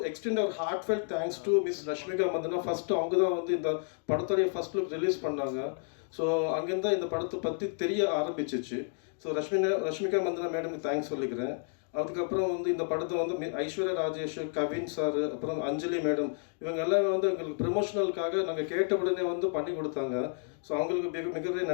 extend our heartfelt thanks to Miss Rashmika Mandana. First அவங்க தான் வந்து இந்த படத்துடைய ஃபர்ஸ்ட் லுக் ரிலீஸ் பண்ணாங்க. ஸோ அங்கேருந்து இந்த படத்தை பற்றி தெரிய ஆரம்பிச்சிச்சு. ஸோ ரஷ்மிகா மந்தனா மேடமுக்கு தேங்க்ஸ் சொல்லிக்கிறேன். அதுக்கப்புறம் வந்து இந்த படத்தை வந்து ஐஸ்வர்யா ராஜேஷ், கவின் சார், அப்புறம் அஞ்சலி மேடம், இவங்க எல்லாமே வந்து எங்களுக்கு ப்ரமோஷனலுக்காக நாங்கள் கேட்ட உடனே வந்து பண்ணி கொடுத்தாங்க. ஸோ அவங்களுக்கு மிகப்பெரிய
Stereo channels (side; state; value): right; silent; 57 dB below the other